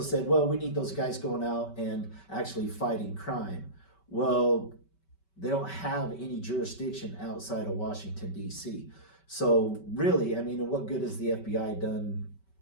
said, well, we need those guys going out and actually fighting crime. Well, they don't have any jurisdiction outside of Washington, D.C. So really, I mean, what good has the FBI done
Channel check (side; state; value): right; late; 5.2 ms